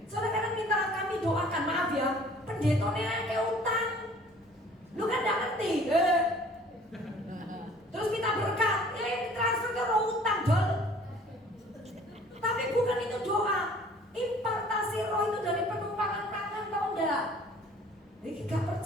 Soalnya kadang minta kami doakan, maaf ya, pendetanya kayak utang. Lu kan enggak ngerti. Terus minta berkat, transfer ke roh utang, dol. Tapi bukan itu doa. Impartasi roh itu dari penumpangan tangan, tau enggak? Ini gak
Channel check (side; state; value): both; normal; correlation 0.52